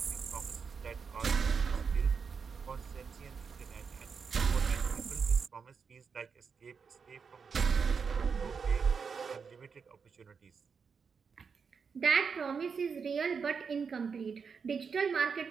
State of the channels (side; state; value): left; quieter; 5.8 dB